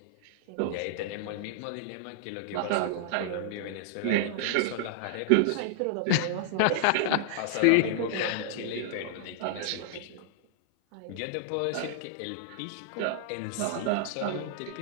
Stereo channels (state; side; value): different; both; correlation -0.01